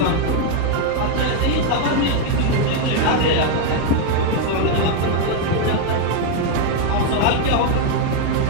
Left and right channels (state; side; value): different; both; correlation 0.01